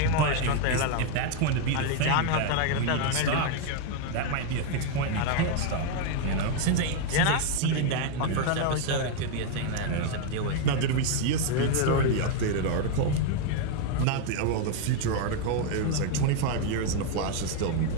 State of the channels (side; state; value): both; different; correlation 0.01